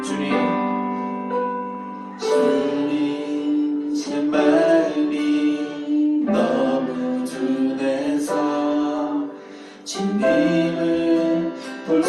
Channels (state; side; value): identical; both; correlation 1.00